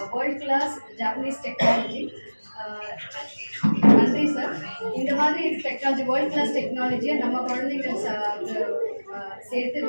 வேர்ல்ட் கிளாஸ் ஜாப்பனீஸ் டெக்னாலஜி. நன்றி சார். இந்த மாதிரி டெக்னாலஜி, வேர்ல்ட் கிளாஸ் டெக்னாலஜியை நம்ம குழந்தைகள் சேர்த்து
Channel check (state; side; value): inverted; both; correlation -1.00